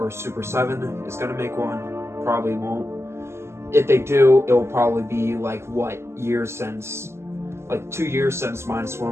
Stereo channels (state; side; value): late; left; 0.13 ms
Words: Super 7 is going to make one. Probably won't. If they do, it will probably be like what years since, like 2 years since